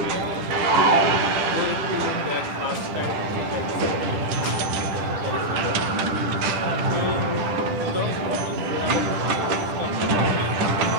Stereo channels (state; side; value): late; left; 10 ms